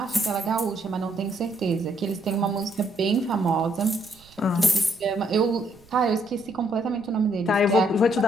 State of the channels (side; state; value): right; noise; rumble, 27 dB below the sound